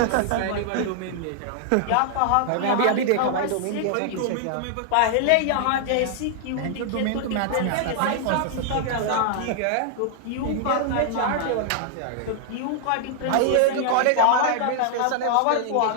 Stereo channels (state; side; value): different; both; correlation 0.00